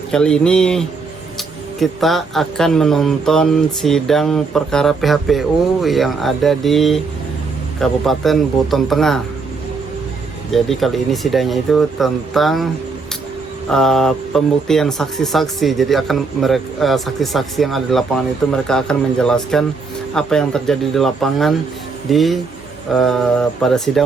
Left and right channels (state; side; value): quieter; left; 4.4 dB